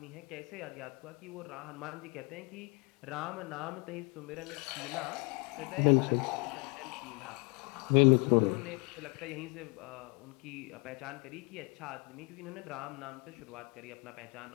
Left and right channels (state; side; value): quieter; right; 30.7 dB